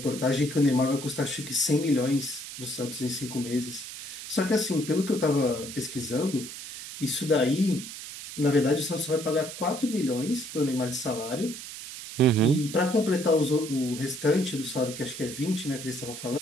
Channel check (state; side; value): noise; right; hiss, 10 dB below the sound